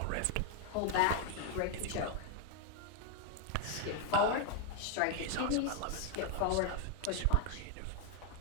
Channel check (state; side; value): different; both; correlation 0.01